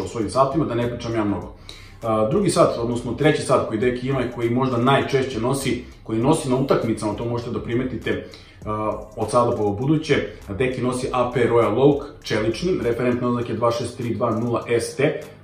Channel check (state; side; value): identical; both; correlation 1.00